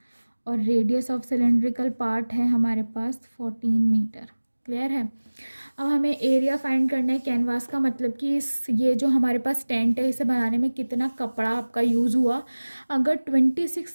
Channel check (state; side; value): inverted; both; correlation -1.00